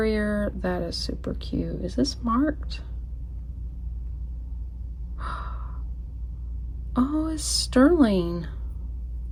That is super cute. Is this marked? Oh, it's sterling.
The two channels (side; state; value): both; identical; correlation 1.00